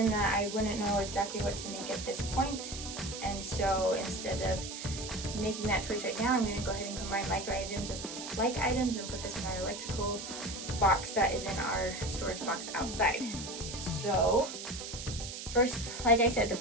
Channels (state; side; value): noise; right; hiss, 8 dB below the sound